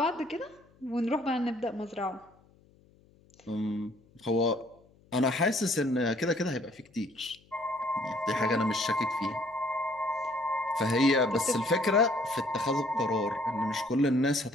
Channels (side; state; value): left; noise; hum, 30 dB below the sound